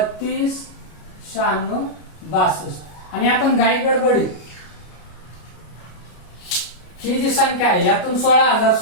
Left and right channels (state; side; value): late; right; 33 ms